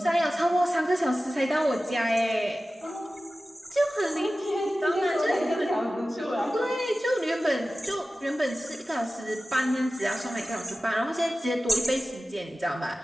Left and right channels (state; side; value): normal; both; correlation 0.95